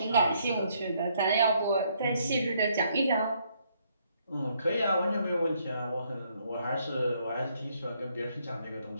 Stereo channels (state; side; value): inverted; both; correlation -0.71